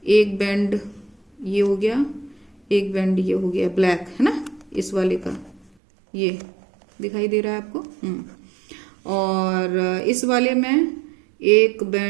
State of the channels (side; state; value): left; drops out; at 5.7 s